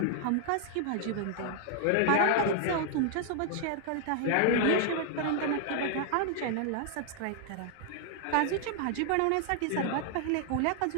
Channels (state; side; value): different; both; correlation 0.00